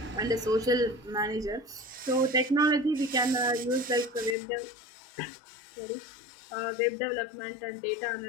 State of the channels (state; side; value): drops out; right; at 4.4 s